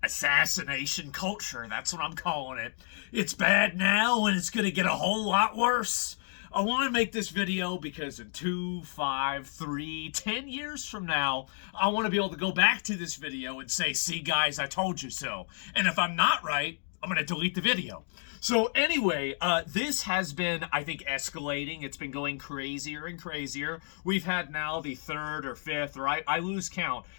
Assassination culture, that's what I'm calling it. It's bad now and it's going to get a whole lot worse. I want to make this video because in 2, 5, 3, 10 years from now, I want to be able to go back to this video and say, see guys, I told you so. And if I'm not right, I'm going to delete the video. So anyway, this has been, I think, escalating. It's been going crazier and crazier. We've had now the third or fifth, or I lose count,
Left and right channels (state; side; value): silent; right; 57 dB below the other